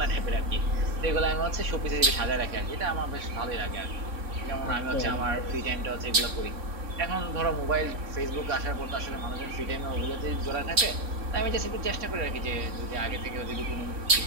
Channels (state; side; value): late; left; 3.6 ms